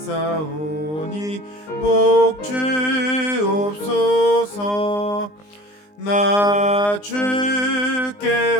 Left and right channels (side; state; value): right; late; 20 ms